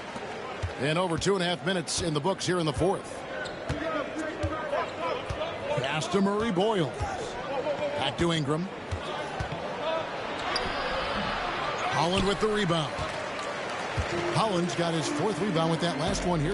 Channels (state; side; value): identical; both; correlation 1.00